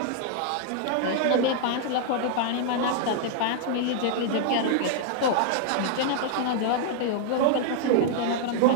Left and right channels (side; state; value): both; different; correlation -0.01